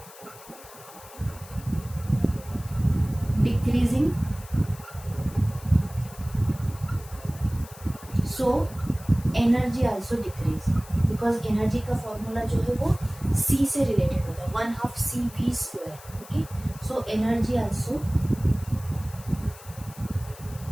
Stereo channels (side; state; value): left; noise; hiss, 19 dB below the sound